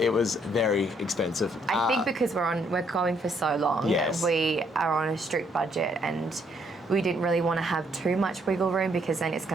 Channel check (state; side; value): normal; both; correlation 0.70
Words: it was very expensive. I think because we're going for so long, we are on a strict budget, and we didn't really want to have too much wiggle room because then it's